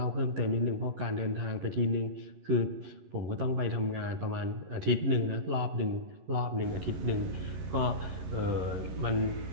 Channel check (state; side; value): late; left; 11 ms